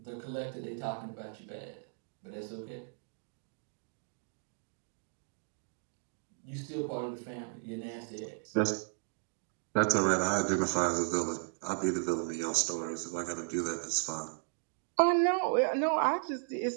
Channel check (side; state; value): left; silent; 54 dB below the other